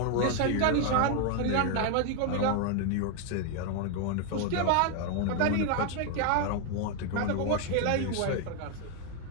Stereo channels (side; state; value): both; different; correlation 0.01